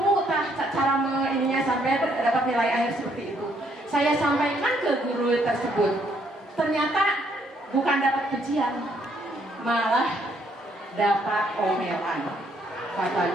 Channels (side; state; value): both; normal; correlation 0.70